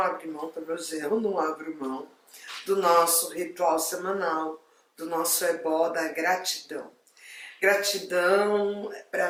mão, pelo menos eu não abro mão, do nosso ritual semanal, do nosso ebó da gratidão. Gratidão,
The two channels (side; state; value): both; identical; correlation 1.00